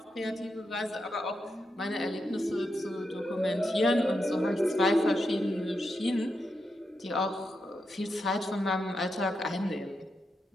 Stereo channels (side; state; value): both; normal; correlation 0.85